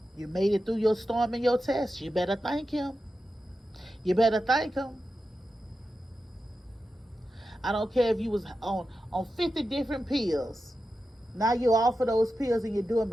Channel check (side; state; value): both; normal; correlation 0.91